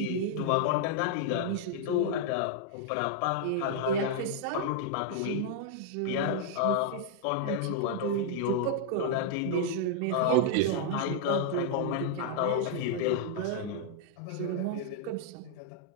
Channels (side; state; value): both; different; correlation -0.01